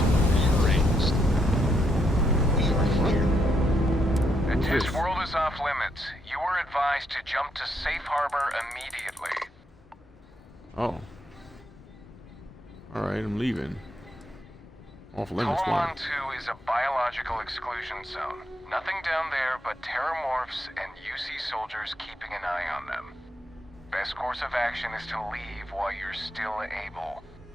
rearranged. We are here. This world is off limits. You are advised to jump to safe harbor immediately. Oh. Alright, I'm leaving. Off limits. Colon 2 is a biological exclusion zone. Nothing down there but terramorphs and UC soldiers keeping an eye on them. Best course of action is to leave while you're still able.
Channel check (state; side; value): normal; both; correlation 0.78